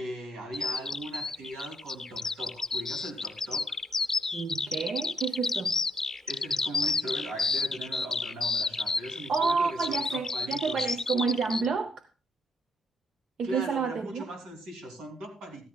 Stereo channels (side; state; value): both; normal; correlation 0.73